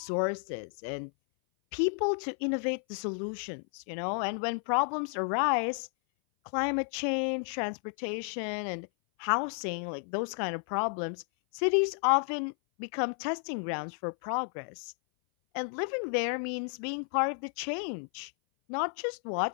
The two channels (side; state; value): right; silent; 56 dB below the other